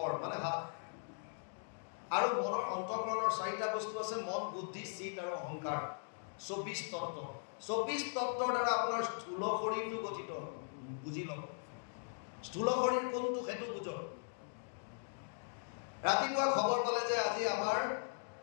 মানে হাত। আৰু মনৰ অন্তঃকৰণৰ 4টা বস্তু আছে, মন, বুদ্ধি, চিত আৰু অহংকাৰ। 24 তত্ত্ব। 24 তত্ত্বৰ দ্বাৰা আপোনাৰ স্থূল শৰীৰটো গঠিত। বুজি লওক, স্থূল শৰীৰ কোনটো সেইটো বুজক। ৰাতিপুৱা খবৰ পালে যে আজি আমাৰ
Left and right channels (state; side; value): silent; right; digital silence